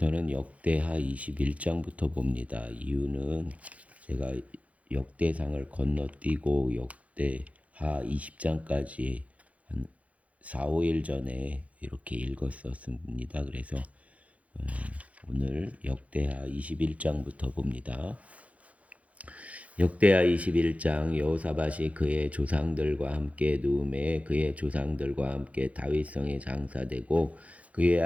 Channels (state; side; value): late; left; 0.066 ms